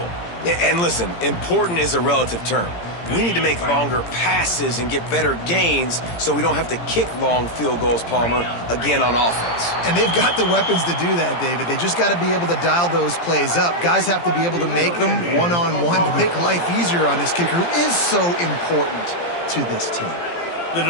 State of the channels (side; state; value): right; late; 17 ms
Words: And listen, important is a relative term. We need to make longer passes and get better gains so we don't have to kick long field goals, Palmer, again on offense. And they've got the weapons to do that, David. They just got to be able to dial those plays up. Guys have to be able to make them one-on-one to make life easier on this kicker who is so important to this team. The